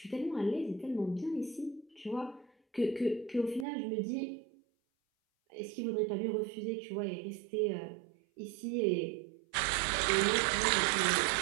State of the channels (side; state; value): left; drops out; at 3.7 s